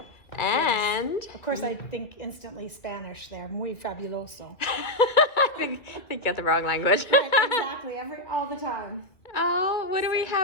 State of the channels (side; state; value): right; late; 2.6 ms